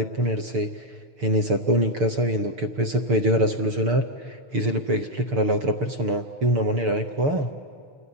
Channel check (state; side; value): late; left; 6.7 ms